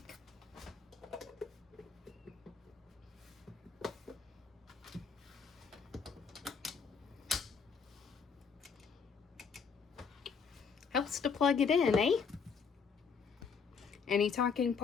Helps to plug it in, eh? Any talking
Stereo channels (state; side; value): quieter; right; 5.8 dB